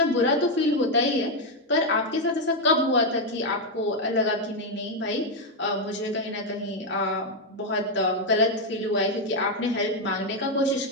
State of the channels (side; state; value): both; normal; correlation 0.03